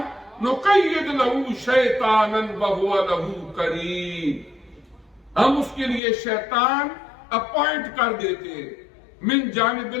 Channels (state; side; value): drops out; right; at 6.0 s